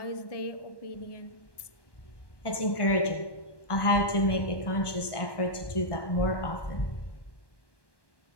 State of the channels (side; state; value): right; late; 1.1 ms